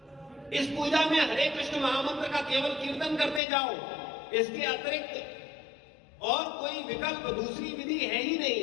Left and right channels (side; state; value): right; drops out; at 3.4 s